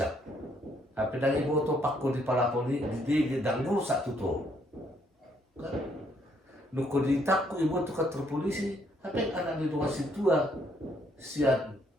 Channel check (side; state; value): both; normal; correlation 0.70